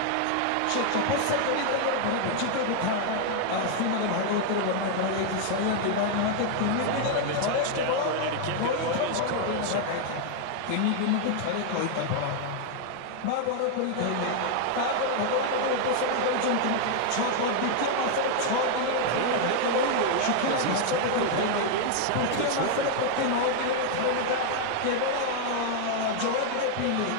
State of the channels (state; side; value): different; both; correlation 0.00